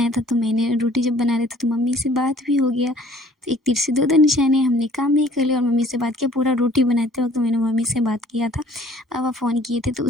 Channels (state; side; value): normal; both; correlation 0.54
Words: था, तो मैंने रोटी जब बना रहे थे तो मम्मी से बात भी हो गया। तो एक तीर से दो निशाने, हमने काम भी कर लिया और मम्मी से बात किया। पूरा रोटी बनाते वक़्त मैंने मम्मी से बात किया था, पापा फ़ोन किए थे। तो